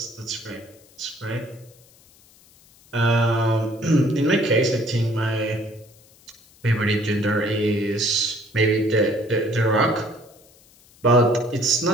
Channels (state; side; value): noise; left; hiss, 28 dB below the sound